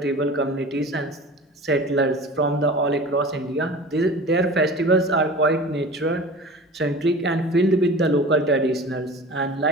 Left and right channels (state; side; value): normal; both; correlation 0.38